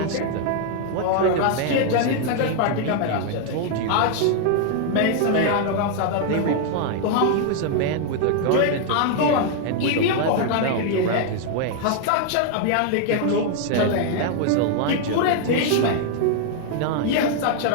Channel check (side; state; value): both; different; correlation 0.00